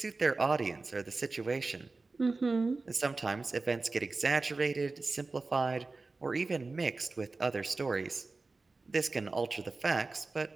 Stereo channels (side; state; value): left; quieter; 3.7 dB